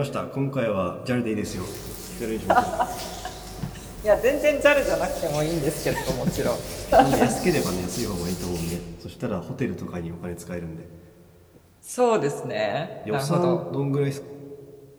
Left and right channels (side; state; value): both; identical; correlation 1.00